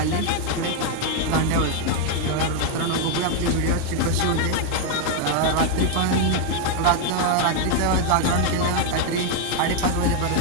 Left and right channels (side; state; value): both; different; correlation 0.01